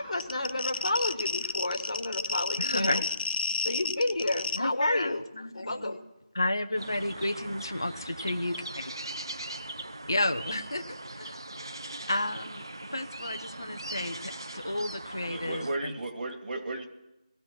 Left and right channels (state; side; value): inverted; both; correlation -0.72